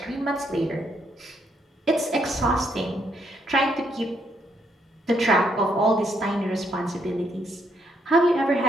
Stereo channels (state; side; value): normal; both; correlation 0.73